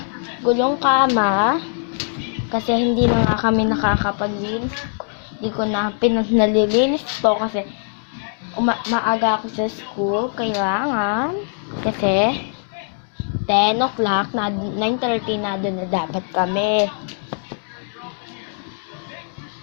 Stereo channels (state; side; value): silent; right; digital silence